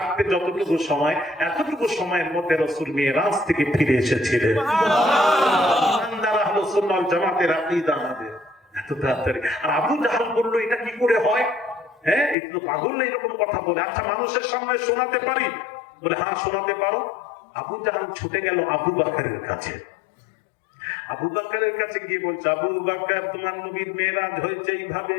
যতটুকু সময়, এতটুকু সময়ের মধ্যে রাসূল মেরাজ থেকে ফিরে এসেছিলেন। ইমানদার আহলে সুন্নাত ওয়াল জামাতের আকীদা আমাদের এত তাড়াতাড়ি। আর আবু জাহাল বলল, এটা কি করে হয়? হ্যাঁ, একটু পাগল না এরকম কথা বলে। আচ্ছা, মানুষের সামনে শোনাতে পারি? বলে, হ্যাঁ শোনাতে পারো। আবু জাহাল ছুটে গেল আবু বকরের কাছে। আবু বকরের কাছে গিয়ে বলছে, আবু বকর তোমার নবীর মেরাজ হয়েছে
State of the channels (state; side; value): drops out; right; at 12.4 s